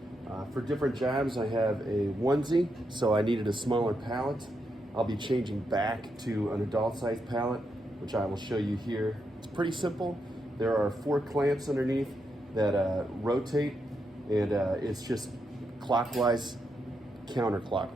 for different jobs I have a onesie, so I needed a smaller pallet. I'll be changing back to an adult size pallet, which I will show you here. It's pretty simple. There are 4 clamps underneath that rotate, and it's just clockwise,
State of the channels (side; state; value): both; normal; correlation 0.82